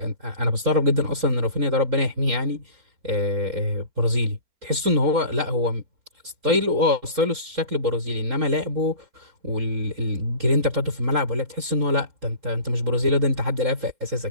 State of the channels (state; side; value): late; left; 3.7 ms